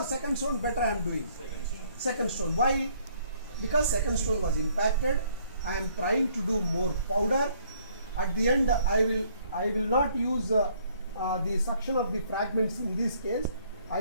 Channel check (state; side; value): inverted; both; correlation -0.64